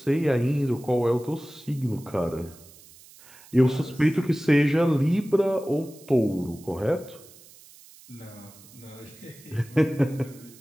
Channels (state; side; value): noise; right; hiss, 23 dB below the sound